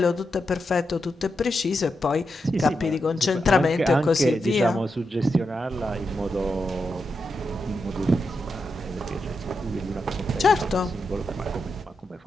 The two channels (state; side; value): normal; both; correlation 0.86